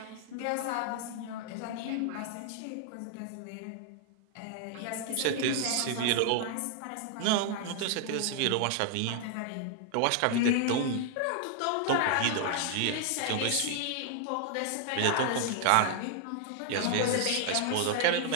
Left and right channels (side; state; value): both; different; correlation 0.00